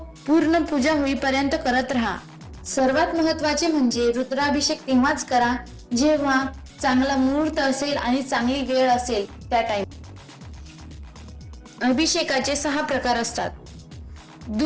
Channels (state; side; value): identical; both; correlation 1.00